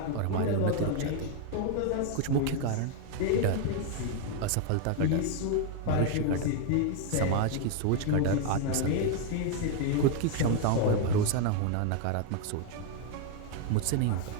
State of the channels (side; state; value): both; different; correlation 0.01